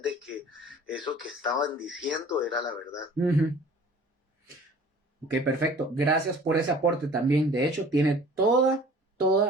que eso que estaban diciendo era la verdad. Ok, perfecto. Gracias por ese aporte también. De hecho, tiene toda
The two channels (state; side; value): normal; both; correlation 0.48